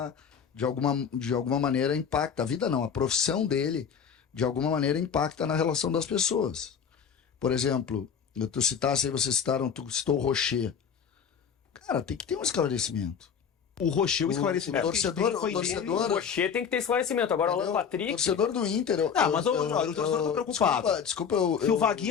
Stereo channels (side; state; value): right; quieter; 7.1 dB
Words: de alguma maneira impacta. A vida não, a profissão dele, de alguma maneira, impacta na relação das pessoas. Por exemplo, vocês citaram, tu citou o Rocher. Cara, tem que ter um esclarecimento. O Rocher, o esclarecimento. o torcedor- que foi o torcedor- dele. O Rocher tem que ter esclarecimento. Agora o Alan Entendeu? Patrick... Torcedor do Inter. Mas o torcedor tá preocupado. Desculpa, Se o